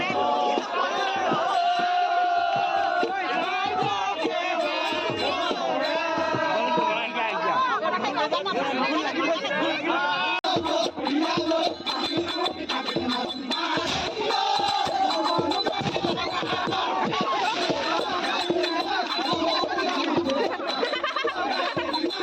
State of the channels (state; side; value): identical; both; correlation 1.00